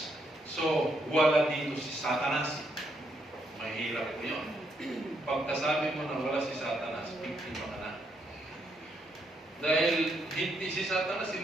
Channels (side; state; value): both; normal; correlation 0.76